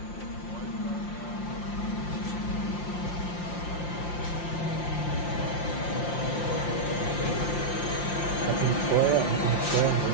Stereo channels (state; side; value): late; right; 5.7 ms